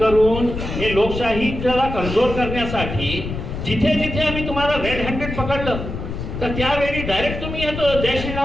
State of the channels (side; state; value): left; noise; rumble, 6 dB below the sound